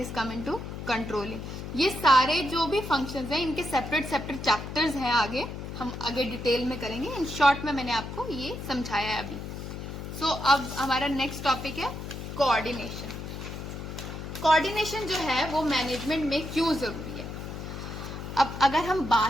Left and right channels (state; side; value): noise; left; hum, 8 dB below the sound